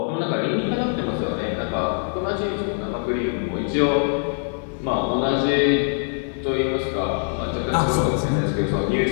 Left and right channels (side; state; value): right; silent; 63 dB below the other